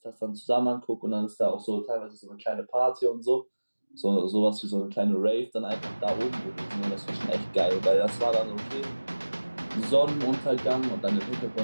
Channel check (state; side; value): inverted; both; correlation -1.00